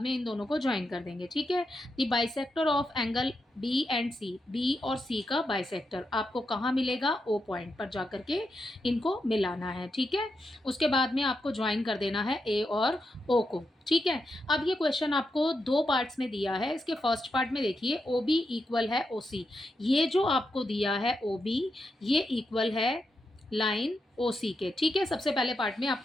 में इन दोनों को ज्वाइन कर देंगे। ठीक है, the bisector of angle B and C, B और सी का बाइसेक्टर आपको कहाँ मिलेगा? ओ पॉइंट पर जाकर के इनको मिलाना है। ठीक है, उसके बाद में आपको ज्वाइन कर देना है ए और ओ को। ठीक है, अब ये क्वेश्चन आपको दो पार्ट्स में दिया है। इसके फर्स्ट पार्ट में देखिए ओ बी इक्वल है ओ सी, ये जो आपको दिया है ओ बी ये इक्वल है लाइन ओ सी के। ठीक है, सबसे पहले पार्ट में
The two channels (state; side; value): normal; both; correlation 0.85